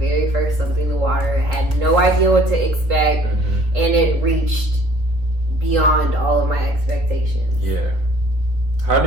first Something in the Water. I had no idea what to expect, and it reached beyond all of my expectations. Yeah. How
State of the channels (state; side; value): late; left; 3.8 ms